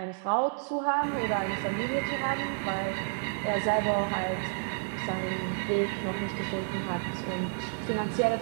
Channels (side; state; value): left; silent; digital silence